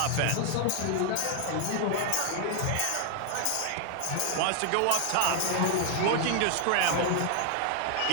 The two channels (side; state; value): both; different; correlation 0.00